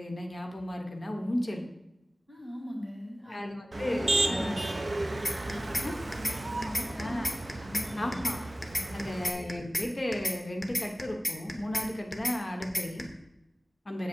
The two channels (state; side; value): normal; both; correlation 0.97